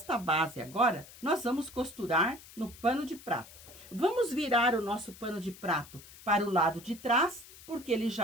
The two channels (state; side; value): noise; left; hiss, 19 dB below the sound